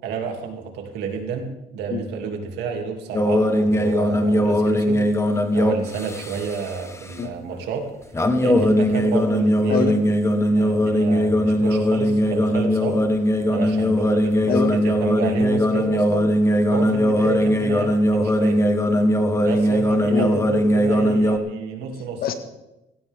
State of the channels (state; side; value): normal; both; correlation 0.81